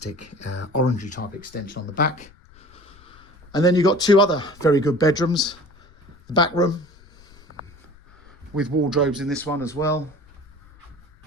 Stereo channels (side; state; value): left; noise; rumble, 26 dB below the sound